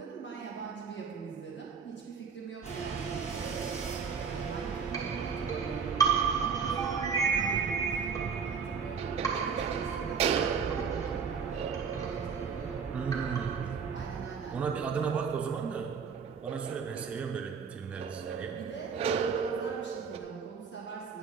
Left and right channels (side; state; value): left; quieter; 6.2 dB